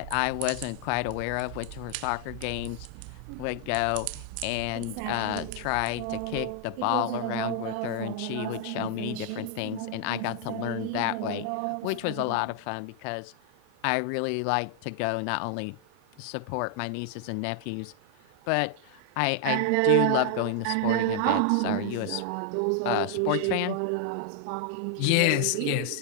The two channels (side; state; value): both; different; correlation 0.00